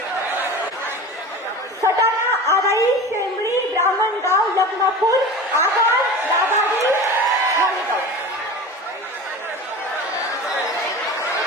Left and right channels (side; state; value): both; normal; correlation 0.33